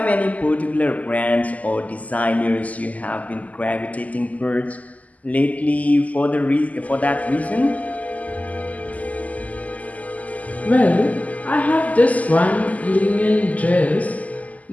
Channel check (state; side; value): late; right; 0.075 ms